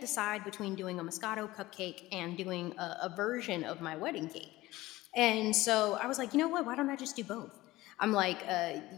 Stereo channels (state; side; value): quieter; right; 18.1 dB